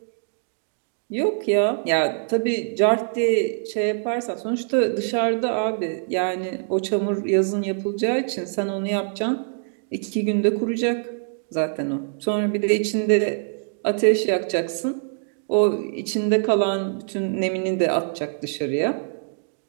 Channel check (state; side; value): silent; left; digital silence